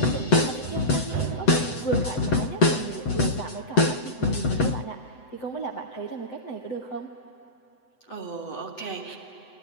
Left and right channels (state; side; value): late; right; 7.9 ms